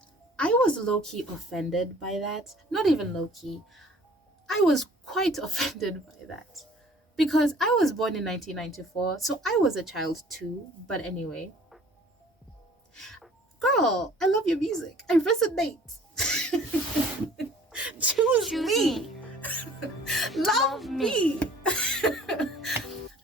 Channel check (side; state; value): both; normal; correlation 0.52